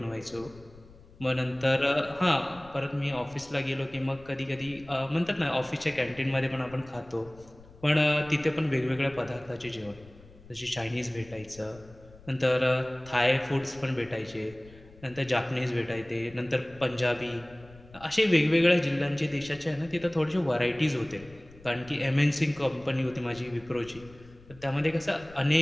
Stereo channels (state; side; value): noise; left; rumble, 22 dB below the sound